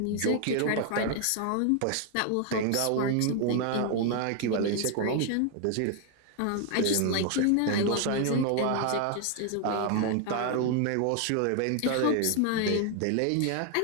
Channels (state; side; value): different; both; correlation 0.01